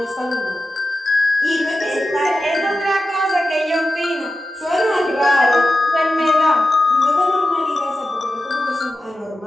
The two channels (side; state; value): both; normal; correlation 0.92